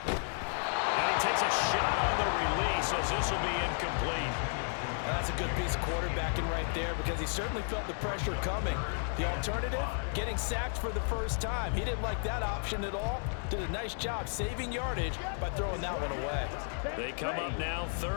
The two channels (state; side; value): silent; right; 56 dB below the other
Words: And he takes a shot on the release as this will be incomplete. That's a good piece of quarterbacking right there because he certainly felt the pressure coming. The alternative, getting sacked for the first time. He didn't like that option at all. Did a nice job saving yardage by throwing that one away. They come up now